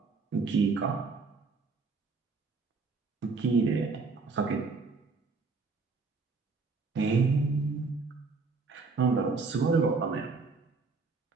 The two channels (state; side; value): quieter; left; 4.3 dB